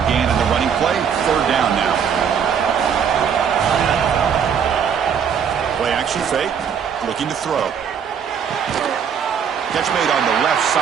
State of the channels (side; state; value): left; quieter; 7.5 dB